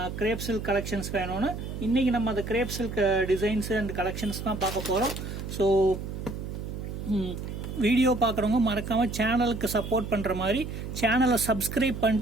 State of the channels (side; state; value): right; noise; hum, 7 dB below the sound